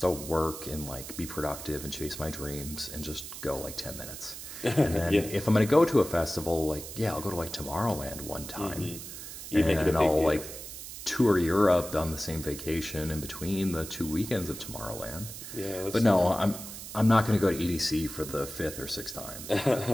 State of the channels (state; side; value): noise; right; hiss, 11 dB below the sound